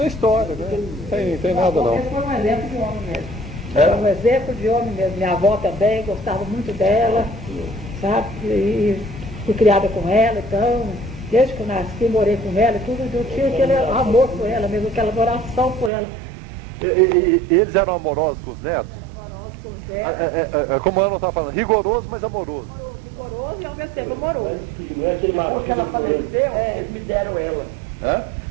história, né? Não tem nada não. Esse foi um exemplo de homem mesmo. Era um exemplo de homem mesmo. Minha avó também gostava muito dela, sabe? E fui criada com ela, então, desde que eu nasci, morei com ela e tudo, eu tinha aquele amor por ela mesmo, aquela adoração por ela. E eles eram amorosos com os netos? Dela, Como eu não estava falando, rigoroso, mas amoroso. rigoroso e ao mesmo tempo amoroso. Não é aquele Porque ela faleceu, eles me deram ela. É?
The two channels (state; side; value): drops out; left; at 15.9 s